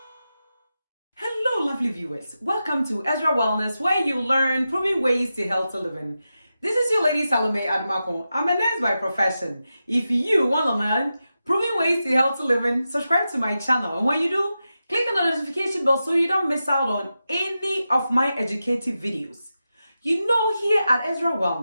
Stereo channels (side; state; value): both; inverted; correlation -0.91